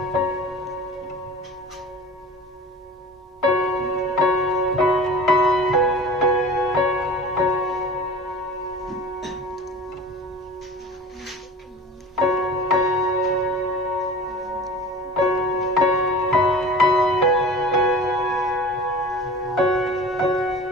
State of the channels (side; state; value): both; normal; correlation 0.39